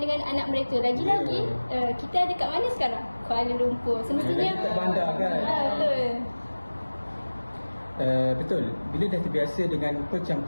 dengan anak mereka. Lagi-lagi kita ada kat mana sekarang? Kuala Lumpur. Semestinya kat bandar kan. Betul. Bila dah terbiasa dengan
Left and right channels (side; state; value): both; inverted; correlation -1.00